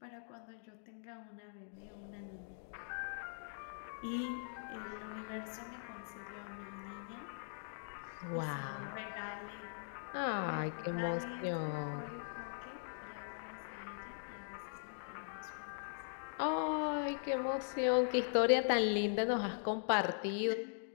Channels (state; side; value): silent; right; digital silence